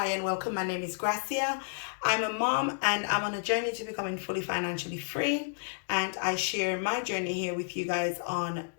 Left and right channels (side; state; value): right; silent; digital silence